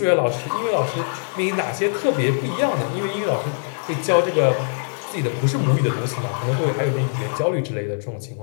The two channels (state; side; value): silent; right; 56 dB below the other